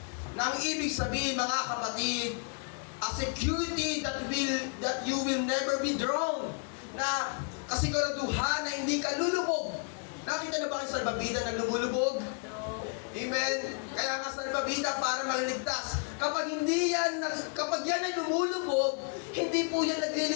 Na ang ibig sabihin mga kapatid, a security that you will never be drowned. Na kasiguraduhan na hindi ka lulubog. Nakita na ba kayo salbabida na lumulubog? Amen. Kaya nga salbabida para maligtas. Kapag yan ay lumulubog, hindi po yan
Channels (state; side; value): quieter; right; 39.6 dB